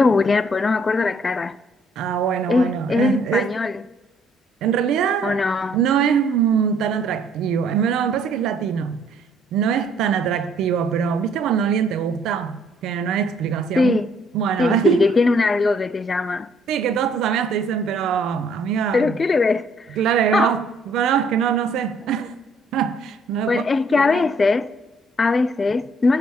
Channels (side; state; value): both; normal; correlation 0.64